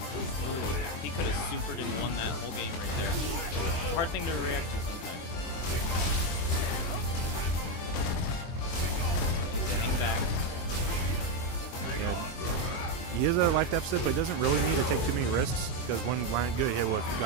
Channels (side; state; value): right; late; 23 ms